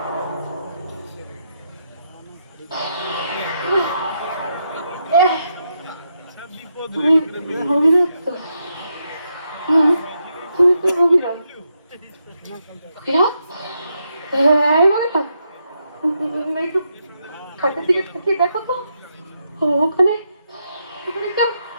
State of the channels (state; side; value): inverted; both; correlation -0.81